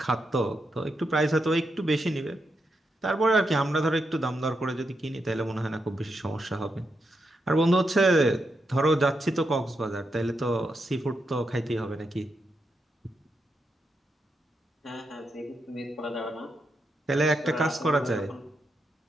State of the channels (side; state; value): both; normal; correlation 0.84